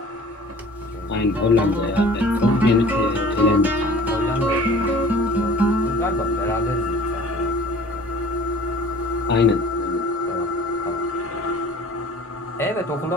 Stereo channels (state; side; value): normal; both; correlation 0.46